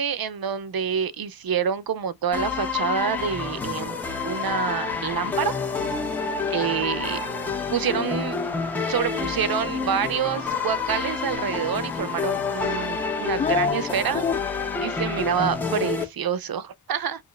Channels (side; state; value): both; normal; correlation 0.09